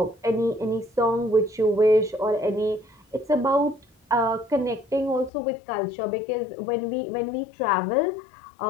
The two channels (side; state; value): right; drops out; at 5.3 s